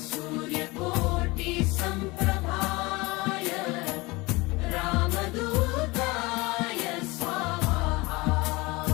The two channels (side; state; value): right; quieter; 23.3 dB